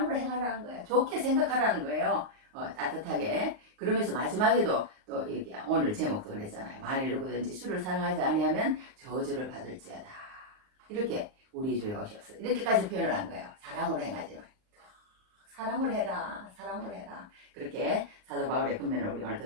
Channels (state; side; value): late; left; 38 ms